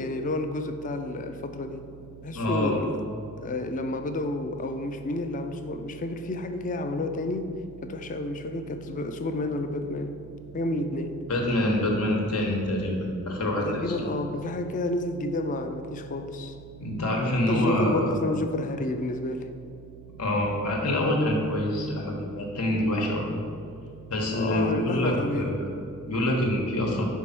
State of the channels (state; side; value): noise; right; hum, 17 dB below the sound